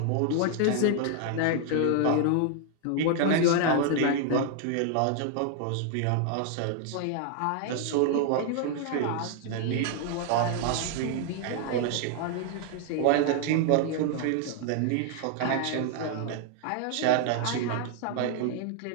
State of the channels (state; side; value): different; both; correlation 0.00